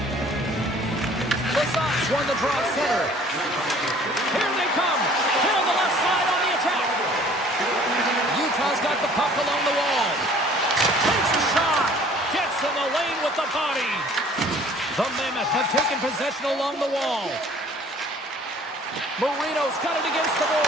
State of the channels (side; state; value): both; normal; correlation 0.53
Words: The Sox won the draw at center. Here they come. Down the left side on the attack. Utah's got the puck along the wall. Takes a shot. Gets in the lane with the body. The Mammoth have taken possession along the wall. Marino's got it against the